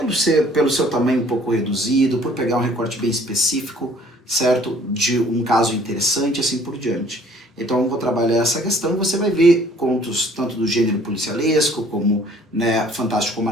pelo seu tamanho um pouco reduzido, por pegar um recorte bem específico, certo? De um caso interessante, assim por diante. Então eu vou trabalhar essa questão e você vai ver contos tanto do gênero policialesco, como, né, fantástico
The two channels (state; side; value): normal; both; correlation 0.56